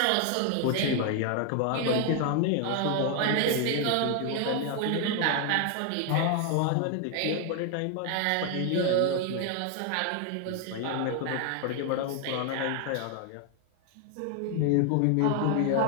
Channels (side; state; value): both; different; correlation 0.00